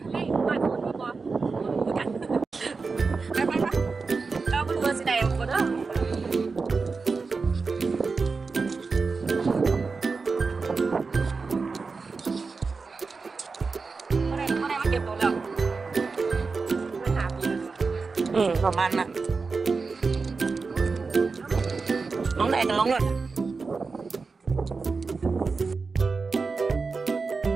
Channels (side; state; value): left; quieter; 4.5 dB